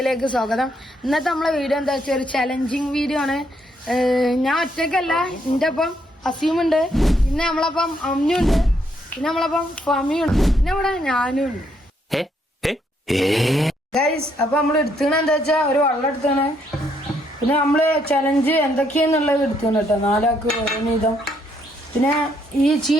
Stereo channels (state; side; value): normal; both; correlation 0.73